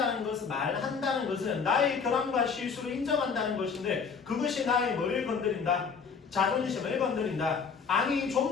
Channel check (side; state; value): right; quieter; 5.7 dB